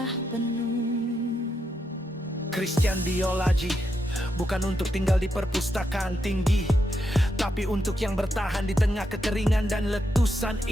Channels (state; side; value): normal; both; correlation 0.83